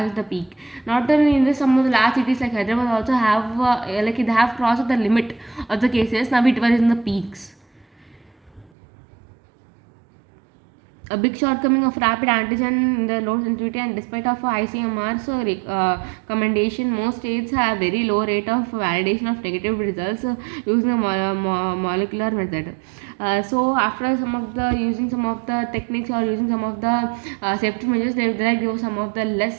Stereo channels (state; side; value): drops out; left; at 8.7 s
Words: the peak. Not only in this, some of the large cities like Hyderabad also have like they have crossed the limit of the cases. Now it was in the peaks. A big shortcoming of rapid antigen in the low sensitivity, and despite of ICMR's recommendation, most states have very low rate of validation of negative results using a molecular method. So after some of the using some of the techniques or using some of the safety measures, they give some of the